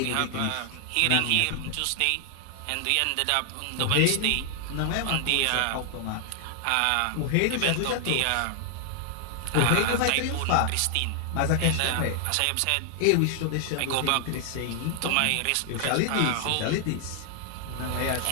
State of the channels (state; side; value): different; both; correlation 0.00